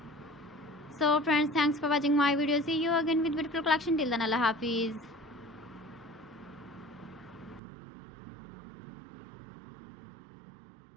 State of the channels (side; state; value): left; drops out; at 7.6 s